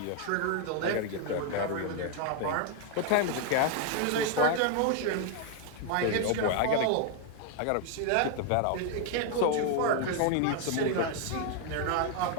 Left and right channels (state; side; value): different; both; correlation 0.00